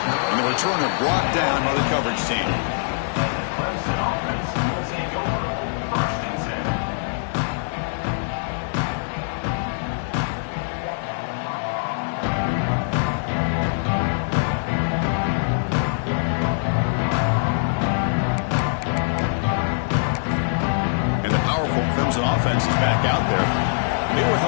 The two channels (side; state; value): right; silent; digital silence